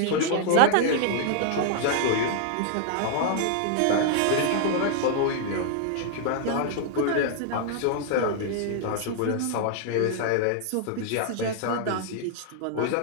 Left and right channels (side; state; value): both; different; correlation -0.01